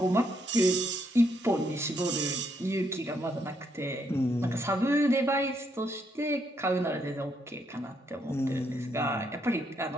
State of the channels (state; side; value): normal; both; correlation 0.75